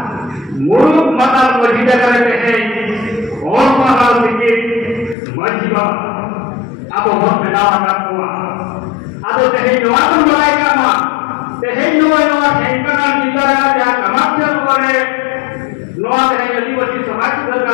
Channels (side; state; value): right; drops out; at 5.2 s